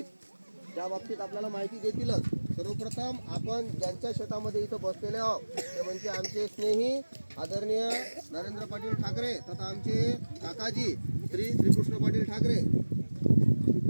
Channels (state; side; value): inverted; both; correlation -1.00